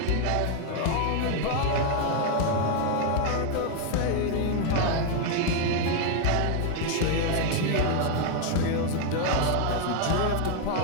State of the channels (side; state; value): both; different; correlation 0.00